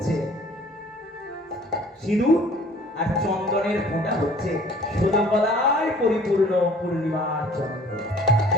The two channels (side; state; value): both; normal; correlation 0.52